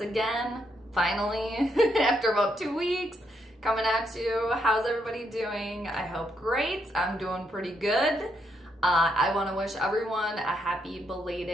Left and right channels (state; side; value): normal; both; correlation 0.77